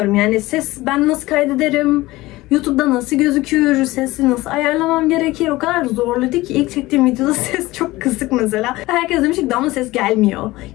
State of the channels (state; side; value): quieter; right; 19.0 dB